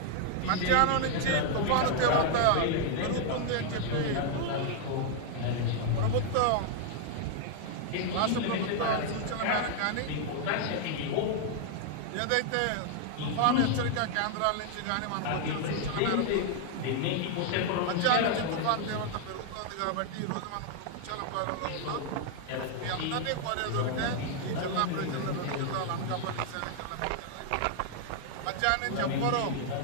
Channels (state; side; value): different; both; correlation 0.00